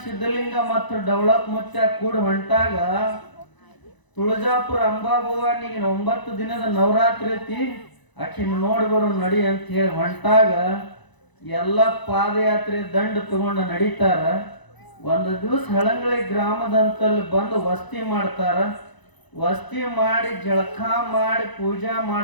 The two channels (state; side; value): late; right; 1.0 ms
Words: ಸಿದ್ಧಲಿಂಗ ಮತ್ತು ಡವಳಪ್ ಮುತ್ಯ ಕೂಡ ಹೊಂಟಾಗ ತುಳಜಾಪುರ ಅಂಬಾಭವಾನಿಗೆ 9 ದಿನದ ನವರಾತ್ರಿ ಐತಿ, ಆಕಿನ ನೋಡಿ ಬರೋ ನಡಿ ಅಂತ ಹೇಳಿ ಹೊಂಟಾಗ ಎಲ್ಲ ಪಾದಯಾತ್ರೆ ದಂಡ ತಗೊಂಡು ನಡೀತಾರ. ಒಂದು ದಿವಸ ಹಳಂಗಳಿ ಗ್ರಾಮದಂತಲ್ಲಿ ಬಂದು ವಸ್ತಿ ಮಾಡ್ತಾರ. ವಸ್ತಿ ಮಾಡಿ ಜಳಕ ಮಾಡಿ ಪೂಜಾ